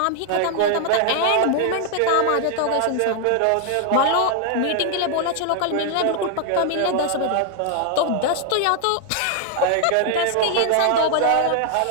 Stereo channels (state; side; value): different; both; correlation 0.00